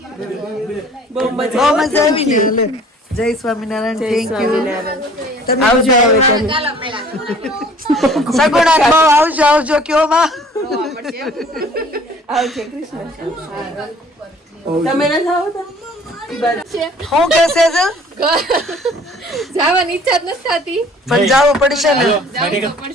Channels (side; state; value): both; normal; correlation 0.52